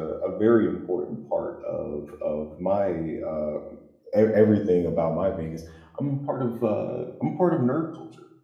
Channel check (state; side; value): identical; both; correlation 1.00